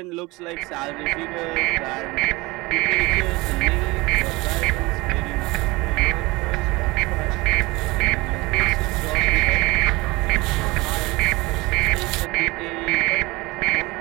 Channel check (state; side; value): quieter; left; 22.5 dB